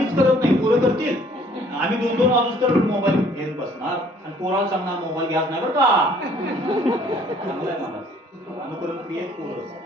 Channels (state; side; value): normal; both; correlation 0.59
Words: करत नाही, पोरं करतील. आम्ही 2-2 वाजूस तर मोबाईल घेऊन बसणार आणि पोराला सांगणार मोबाईल घ्यायच नाही बरं का. चांगलं आहे मला अनुकरण क्रियेत पोरं